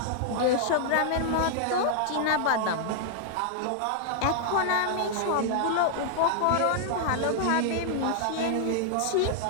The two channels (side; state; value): both; different; correlation -0.01